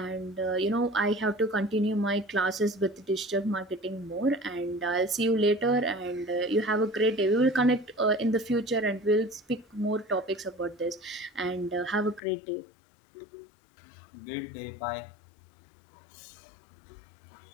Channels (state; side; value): drops out; right; at 12.2 s